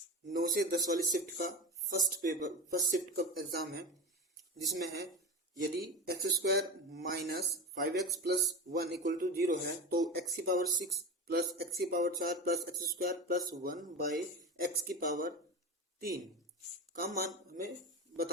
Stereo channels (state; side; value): normal; both; correlation 0.24